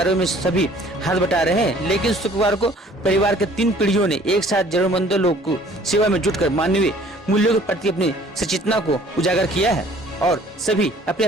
में सभी हाथ बटा रहे हैं, लेकिन शुक्रवार को परिवार के 3 पीढ़ियों ने एक साथ जरूरतमंदों लोगों को सेवा में जुटकर मानवीय मूल्यों के प्रति अपनी सचेतना को उजागर किया है और सभी अपने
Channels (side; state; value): both; normal; correlation 0.54